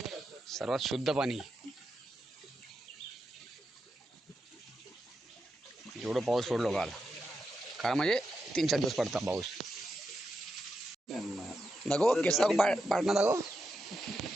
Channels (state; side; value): normal; both; correlation 0.86